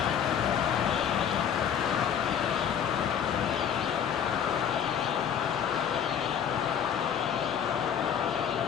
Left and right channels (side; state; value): right; quieter; 8.4 dB